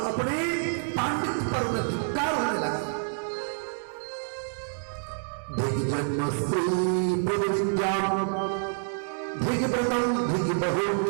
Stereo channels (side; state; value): left; silent; 60 dB below the other